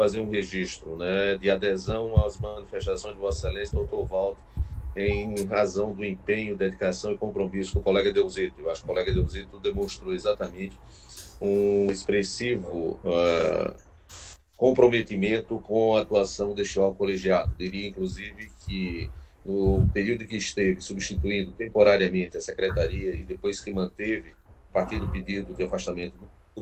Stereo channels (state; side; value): identical; both; correlation 1.00